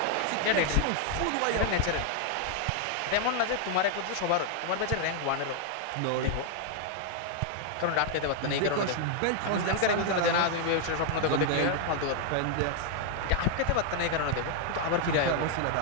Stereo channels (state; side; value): different; both; correlation 0.00